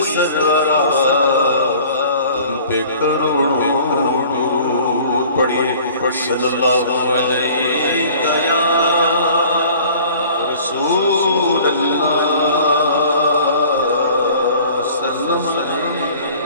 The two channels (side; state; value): both; inverted; correlation -0.48